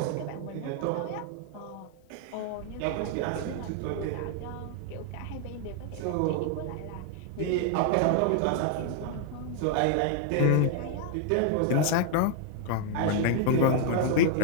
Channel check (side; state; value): both; different; correlation 0.00